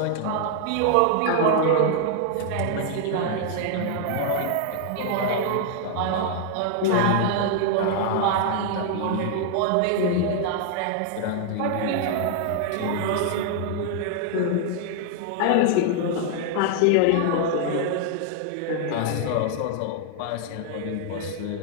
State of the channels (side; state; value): both; different; correlation 0.00